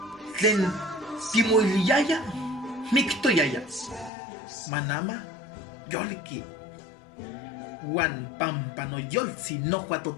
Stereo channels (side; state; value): right; drops out; at 4.1 s